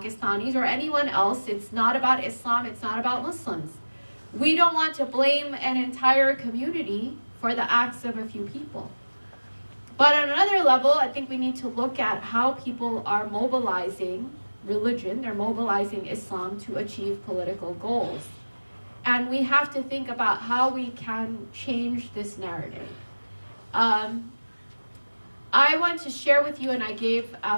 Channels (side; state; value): both; inverted; correlation -1.00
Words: or anyone else. It's not about Islam. It's not about Muslims. We don't want to blame an entire community for the acts of a few people. But on another level, I think we need to look at how people are mobilizing religion. They're mobilizing Islam to achieve political goals. And we have to think about how we can change this narrative. I want to share with you, and I gave